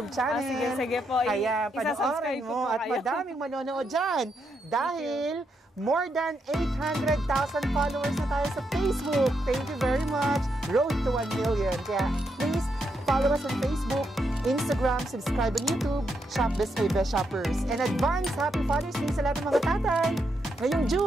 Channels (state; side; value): normal; both; correlation 0.81